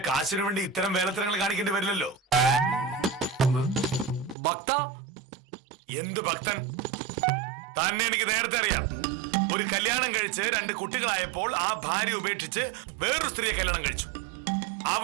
കാശിനു വേണ്ടി ഇത്തരം വേലത്തരങ്ങൾ കാണിക്കേണ്ടി വരില്ലല്ലോ. ഭക്ത? എന്ത് ഭക്തൻ? തന്നെ എനിക്ക് നേരത്തെ അറിയാം. ഒരു കല്യാണം കഴിച്ച് 2 കുട്ടികളായപ്പോൾ ആ ഭാര്യ ഉപേക്ഷിച്ച് വേറൊരു സ്ത്രീയെ കല്യാണം കഴിച്ചു.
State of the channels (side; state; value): left; drops out; at 4.4 s